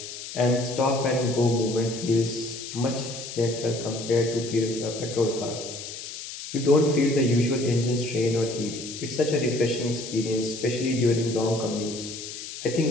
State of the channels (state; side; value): noise; left; hiss, 10 dB below the sound